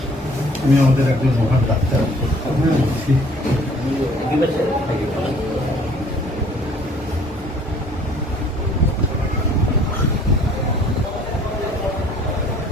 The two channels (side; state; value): both; normal; correlation 0.56